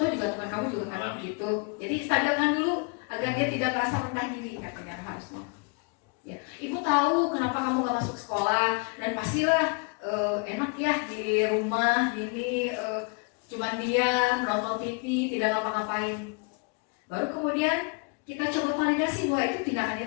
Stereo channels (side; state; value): right; quieter; 31.1 dB